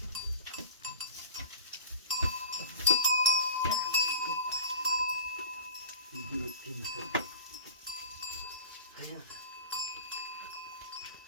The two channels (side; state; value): both; inverted; correlation -0.39